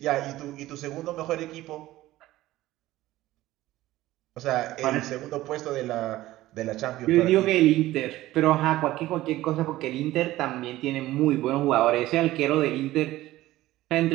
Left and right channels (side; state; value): left; quieter; 16.2 dB